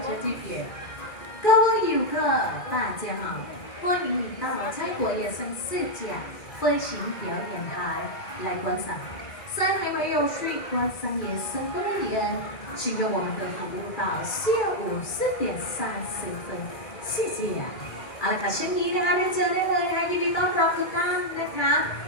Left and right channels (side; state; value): right; late; 2.3 ms